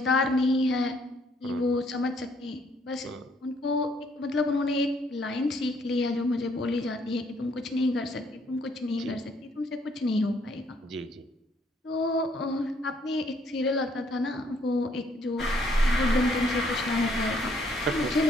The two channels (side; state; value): both; normal; correlation 0.67